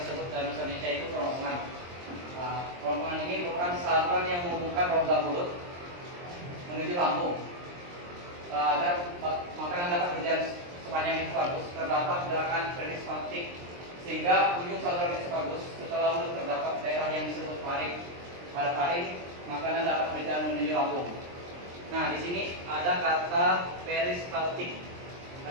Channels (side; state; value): left; late; 23 ms